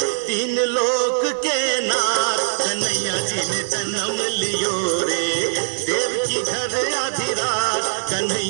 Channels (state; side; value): silent; left; 65 dB below the other